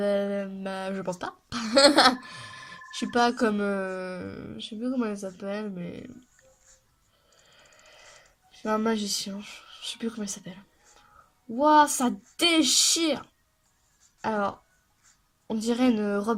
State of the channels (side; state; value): both; identical; correlation 1.00